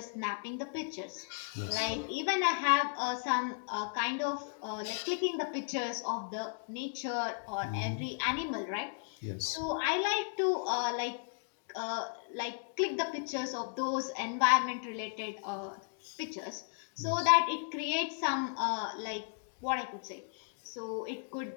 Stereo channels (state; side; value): silent; right; digital silence